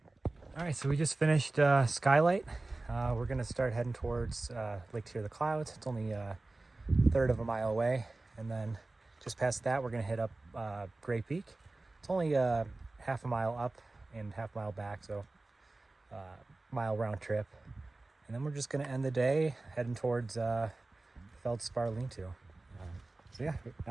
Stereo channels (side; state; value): left; quieter; 3.1 dB